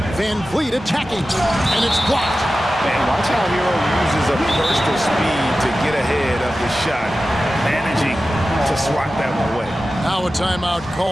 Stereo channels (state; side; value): normal; both; correlation 0.94